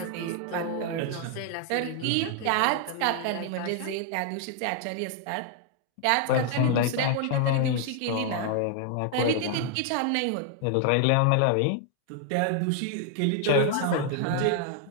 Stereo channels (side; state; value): both; different; correlation 0.00